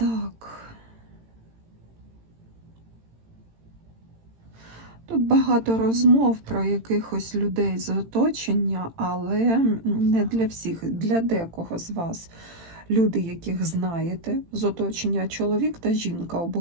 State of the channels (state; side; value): late; left; 18 ms